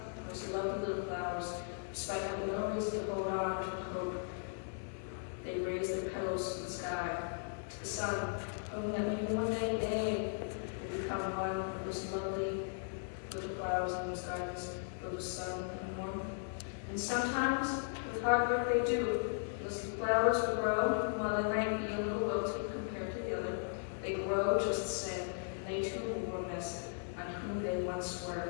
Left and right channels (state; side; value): silent; right; digital silence